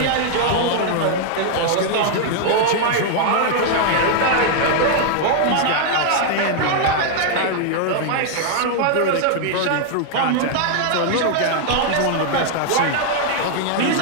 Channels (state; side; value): different; both; correlation 0.00